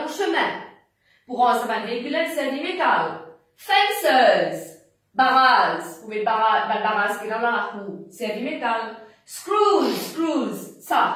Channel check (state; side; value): identical; both; correlation 1.00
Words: au chemin. Pour un, ça va le véhicule, c'est du métal. Fences. Barrages. Vous mettez barrages qui est dans la roue. C'est du métal. Screws.